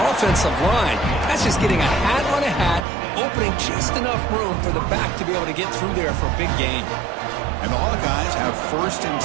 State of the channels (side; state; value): left; drops out; at 2.9 s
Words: offensive line? That's just getting a hat on a hat, opening just enough room for the back to be able to get through there for a big gain. And the Hawkeyes have 1st and